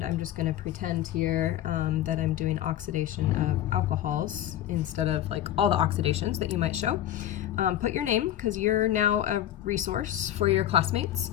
I'm just going to pretend here that I'm doing oxidation of alcohols instead of like all the oxidations that you might show. Put your name, because you're now a resource for your classmates.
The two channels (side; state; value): right; quieter; 12.2 dB